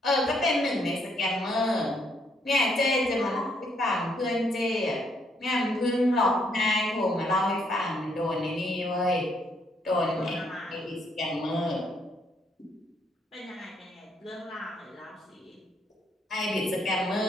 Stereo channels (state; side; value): normal; both; correlation 0.71